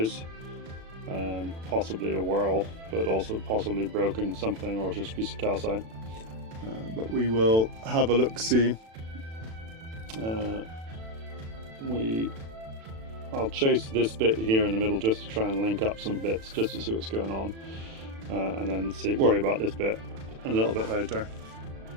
possibly a whirl, but also possibly broken something or just a piece of calcite. But we will have a look see. We I'll chase this bit here in the middle just to try and link up some bits, just to see what's going on, and then worry about this bit a little bit later.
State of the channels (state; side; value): late; left; 36 ms